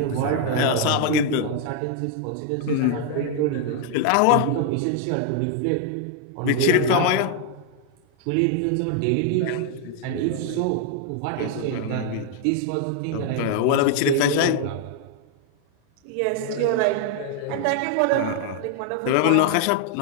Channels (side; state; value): both; different; correlation 0.00